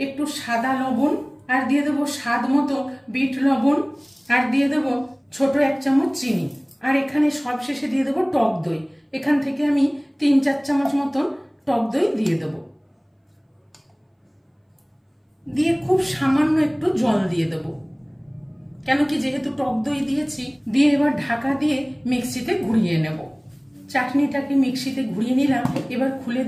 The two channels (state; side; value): identical; both; correlation 1.00